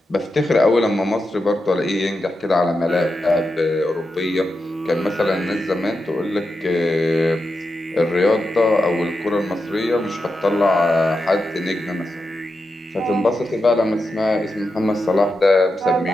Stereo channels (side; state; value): both; normal; correlation 0.88